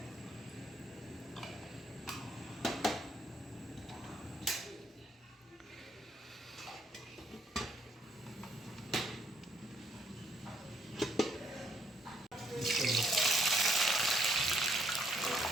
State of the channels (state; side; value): normal; both; correlation 0.69